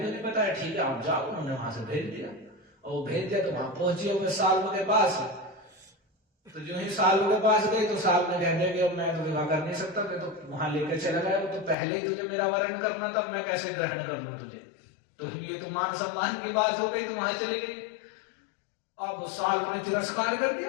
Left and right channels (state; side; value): drops out; right; at 11.8 s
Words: नहीं बताया, ठीक है आप जाओ। उन्होंने वहां से भेज दिया और वो भेज दिया तो वहां पहुंची हुए साल के पास। तो जो ही साल के पास गई तो साल ने कहने कि अब मैं तो विवाह कर नहीं सकता, मैं तो वहां लेकर चला गया। वो तो पहले ही तुझे मेरा वरण करना था, मैं कैसे ग्रहण कर लूं तुझे। तो ये तो मान सम्मान की बात हो गई, तो वहां चली गई। अब साल ने तिरस्कार कर